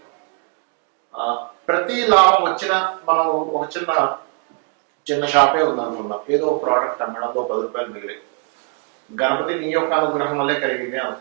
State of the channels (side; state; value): left; quieter; 34.2 dB